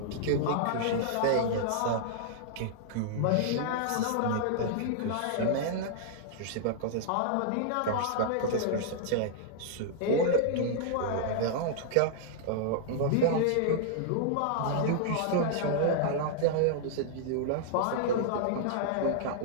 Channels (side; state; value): both; different; correlation -0.01